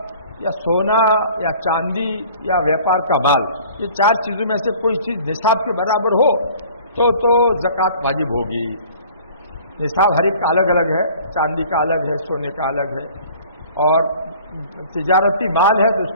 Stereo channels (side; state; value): both; inverted; correlation -0.49